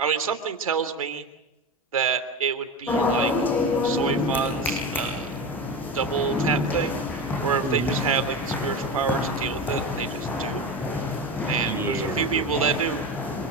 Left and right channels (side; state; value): both; normal; correlation 0.23